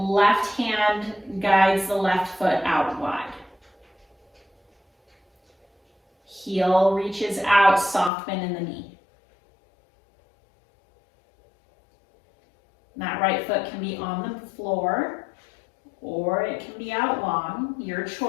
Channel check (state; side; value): drops out; right; at 8.1 s